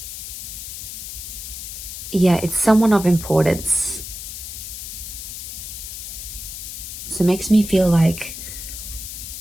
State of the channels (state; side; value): noise; left; hiss, 9 dB below the sound